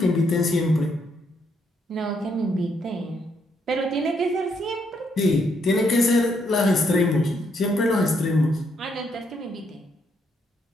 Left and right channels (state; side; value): normal; both; correlation 0.75